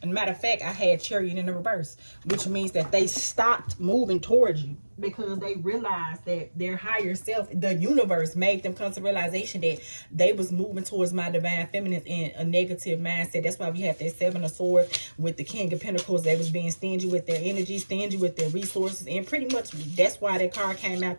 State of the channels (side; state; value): both; inverted; correlation -1.00